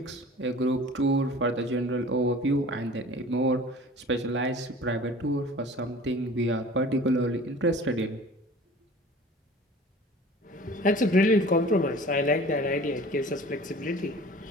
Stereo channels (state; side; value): normal; both; correlation 0.44